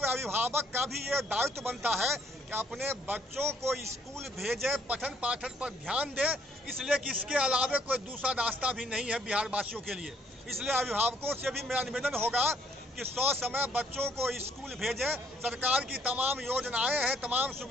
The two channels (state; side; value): normal; both; correlation 0.65